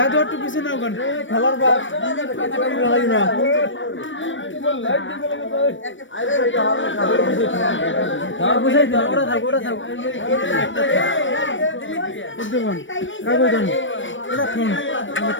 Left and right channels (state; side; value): late; right; 0.56 ms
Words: একটু পিছে নাও গান খেলার বাপ না বুঝাই দাও ওরা থাক ডুবন কাগজ দাও ওরা ফোন আমার